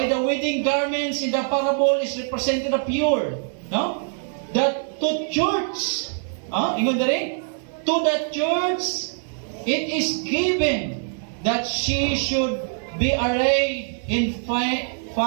the wedding garments in the parable is represented the pure, no? That to church, ingon dere, to the church it is given that she should be arrayed in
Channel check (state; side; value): silent; left; 63 dB below the other